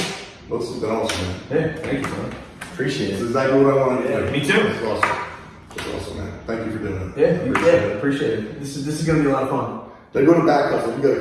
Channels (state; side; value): identical; both; correlation 1.00